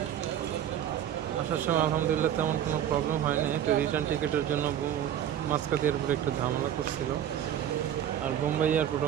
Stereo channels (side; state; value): left; quieter; 10.3 dB